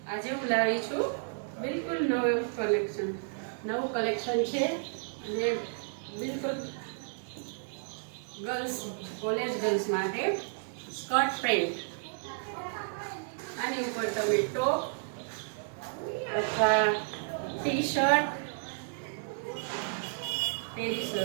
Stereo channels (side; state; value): left; silent; digital silence